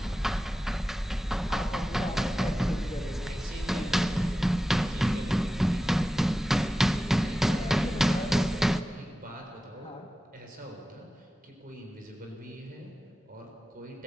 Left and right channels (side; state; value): both; normal; correlation 0.95